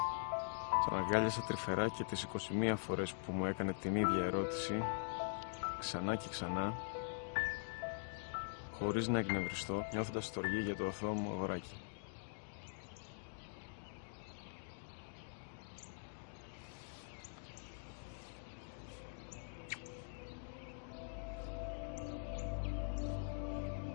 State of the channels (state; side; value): silent; right; digital silence